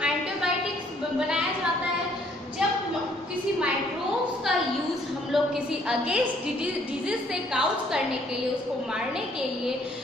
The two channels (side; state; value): both; normal; correlation 0.64